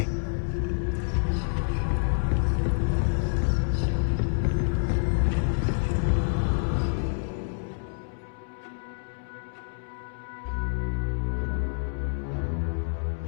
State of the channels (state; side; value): silent; right; digital silence